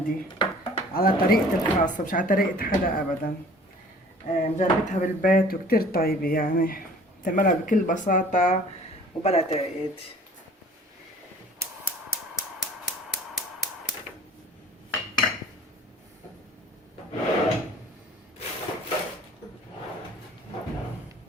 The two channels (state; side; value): normal; both; correlation 0.49